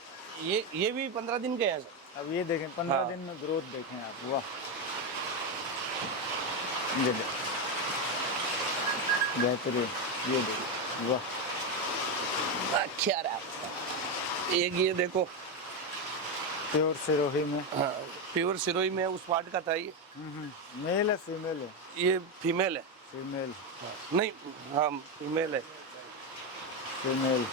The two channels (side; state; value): both; normal; correlation 0.09